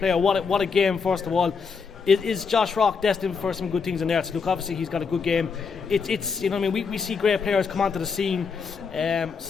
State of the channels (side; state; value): right; quieter; 5.4 dB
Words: What a game! First of all, is Josh Rock destined for some good things in there? So look, obviously he's got a good game. It's we see great players come onto the scene.